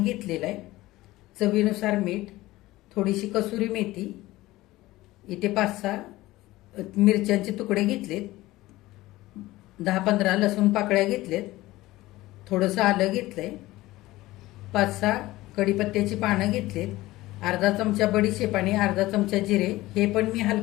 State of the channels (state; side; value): quieter; right; 17.9 dB